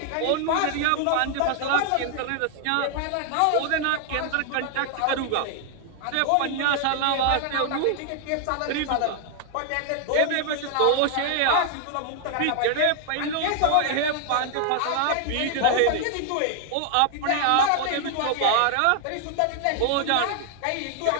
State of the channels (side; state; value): both; different; correlation 0.00